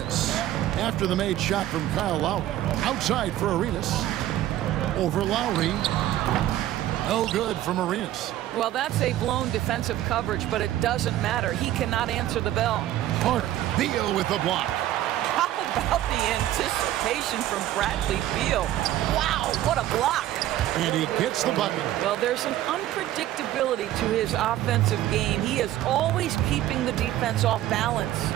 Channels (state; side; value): quieter; left; 13.5 dB